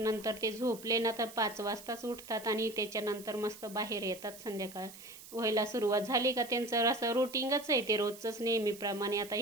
ते झोपले ना तर 5 वाजताच उठतात आणि त्याच्यानंतर मस्त बाहेर येतात. संध्याकाळ व्हायला सुरुवात झाली का त्यांचं असं रुटीनच आहे ते रोजचंच नेहमीप्रमाणे. आता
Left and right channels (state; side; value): noise; right; hiss, 17 dB below the sound